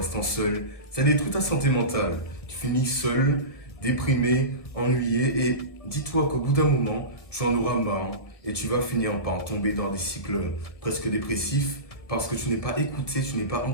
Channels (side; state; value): right; late; 1.6 ms